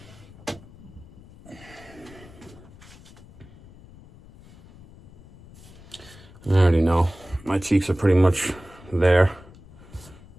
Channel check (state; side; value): noise; left; rumble, 21 dB below the sound